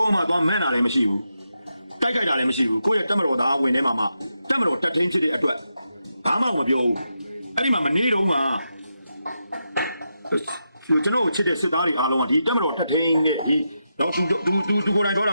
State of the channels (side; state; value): both; inverted; correlation -0.85